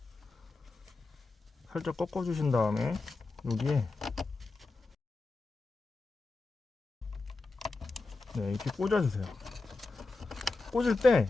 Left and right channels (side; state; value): right; quieter; 3.5 dB